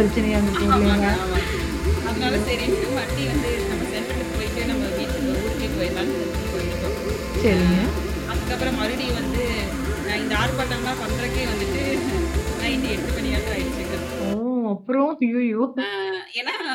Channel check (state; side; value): identical; both; correlation 1.00